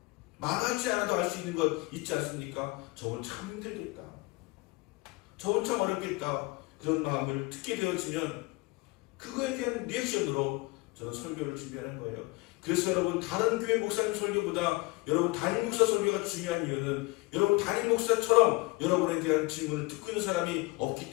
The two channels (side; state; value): right; quieter; 24.1 dB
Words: 말하지 않아도 알 수 있는 것 있지 않습니까? 저건 참 힘들겠다, 저건 참 어렵겠다, 그런 마음을 듣게 되어지면 그거에 대한 리액션으로 저는 설교를 준비하는 거예요. 그래서 여러분 다른 교회 목사님 설교보다 여러분 담임 목사 설교가 중요한 이유는 여러분 담임 목사처럼 여러분에 대한 질문을 듣고 있는 사람이 없기